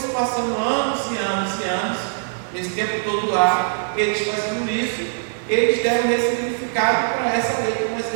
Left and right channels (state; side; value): silent; left; digital silence